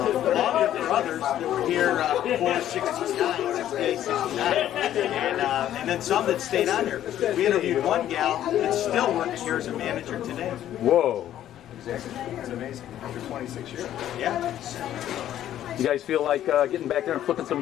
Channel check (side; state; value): right; quieter; 11.8 dB